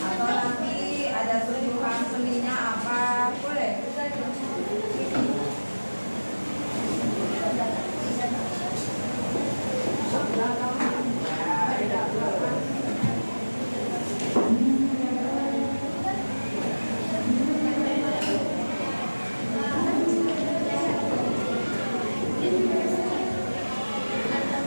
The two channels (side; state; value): both; inverted; correlation -1.00